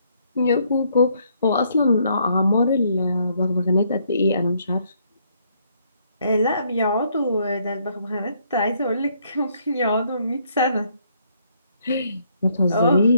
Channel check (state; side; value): inverted; both; correlation -0.70